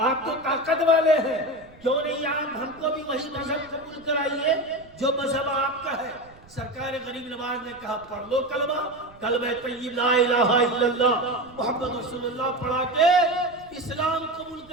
تو طاقت والے ہیں، کیوں نہیں آپ ہم کو بھی وہی مذہب قبول کرائیے جو مذہب آپ کا ہے۔ سرکار غریب نواز نے کہا پڑھ لو کلمہ طیب لا الہ الا اللہ محمد رسول اللہ پڑھا کے اسلام قبول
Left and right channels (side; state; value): right; noise; rumble, 25 dB below the sound